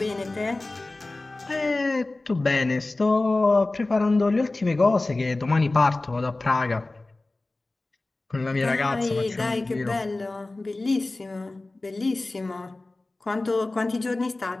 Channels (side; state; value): right; quieter; 3.0 dB